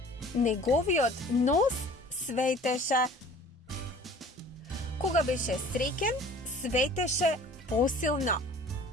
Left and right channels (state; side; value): normal; both; correlation 0.48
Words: Неговиот нос светеше. Кога беше среќен, светеше посилно.